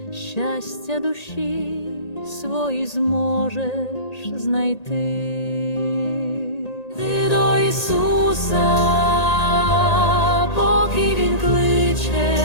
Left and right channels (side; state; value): right; late; 1.8 ms